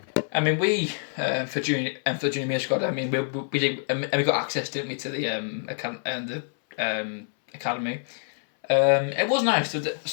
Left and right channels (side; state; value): right; silent; 61 dB below the other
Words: we for junior year squad. I mean, we did, and we got access, didn't we, to the academy. It was nice. There